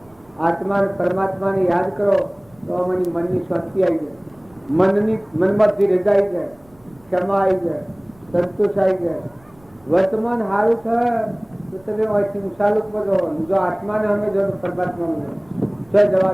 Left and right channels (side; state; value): right; noise; rumble, 29 dB below the sound